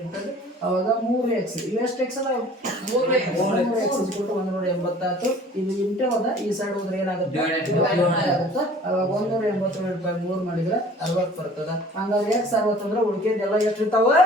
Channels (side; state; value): both; normal; correlation 0.49